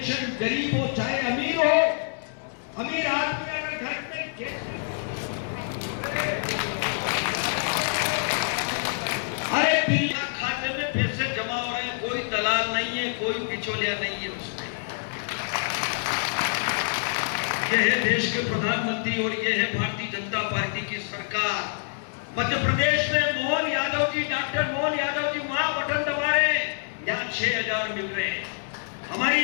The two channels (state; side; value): silent; right; digital silence